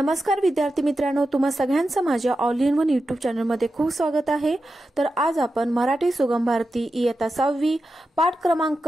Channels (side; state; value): both; normal; correlation 0.91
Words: विद्यार्थी मित्रांनो, तुम्हा सगळ्यांचं माझ्या ऑल इन वन यूट्यूब चॅनलमध्ये खूप स्वागत आहे। तर आज आपण मराठी सुगम भारती इयत्ता 6वी पाठ